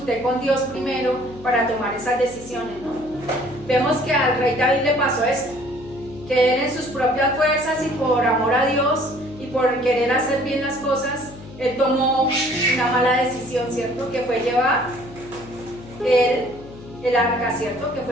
con Dios primero para tomar esas decisiones, no? Vemos que al rey David le pasó esto, que él en sus propias fuerzas y por amor a Dios y por querer hacer bien las cosas, él tomó una mala decisión, ¿cierto? Que fue llevar el arca, ¿cierto? Que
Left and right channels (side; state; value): left; noise; hum, 17 dB below the sound